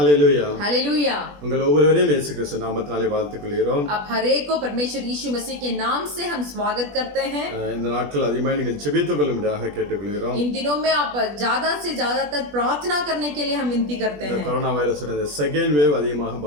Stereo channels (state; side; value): late; left; 20 ms